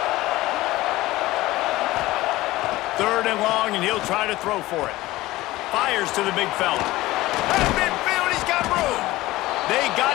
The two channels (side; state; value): right; quieter; 18.0 dB